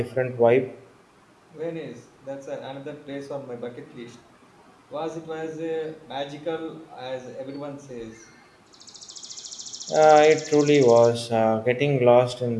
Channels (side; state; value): both; identical; correlation 1.00